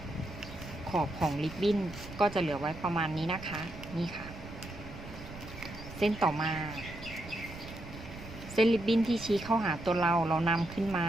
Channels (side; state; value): right; noise; rumble, 13 dB below the sound